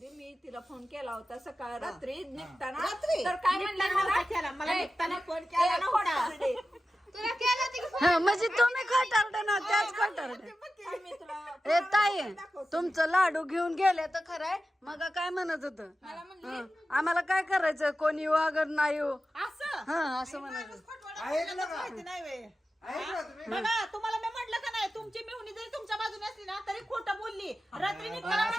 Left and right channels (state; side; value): normal; both; correlation 0.93